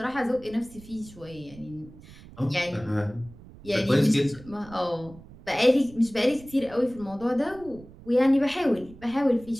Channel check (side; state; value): right; noise; rumble, 20 dB below the sound